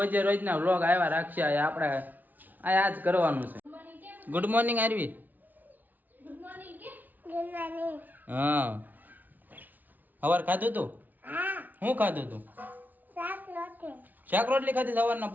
રોજના વ્લોગ આવ્યા રાખશે. આપણે આ જ કરવાનું છે. Good morning Aarvi. Good morning કે ગુડ મોર્નિંગ. હા, સવાર ખાધું તું? હા. શું ખાધું તું? શાક રોટલી ખાધી સવારના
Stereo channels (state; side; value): late; left; 0.082 ms